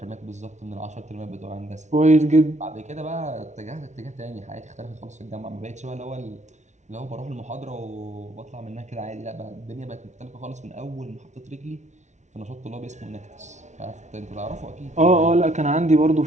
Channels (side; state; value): left; late; 0.34 ms